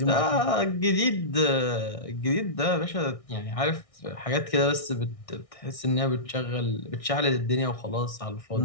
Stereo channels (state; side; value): late; right; 1.6 ms